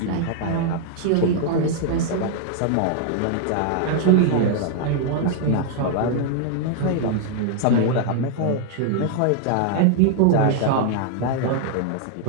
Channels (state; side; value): different; both; correlation 0.00